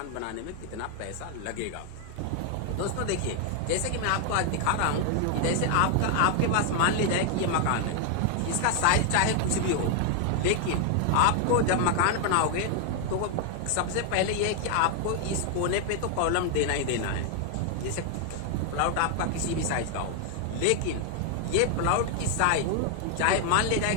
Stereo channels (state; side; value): different; both; correlation 0.00